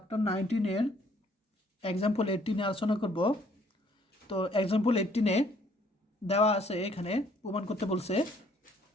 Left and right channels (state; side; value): normal; both; correlation 0.63